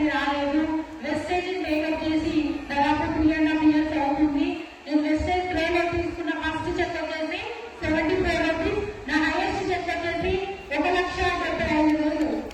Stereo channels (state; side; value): identical; both; correlation 1.00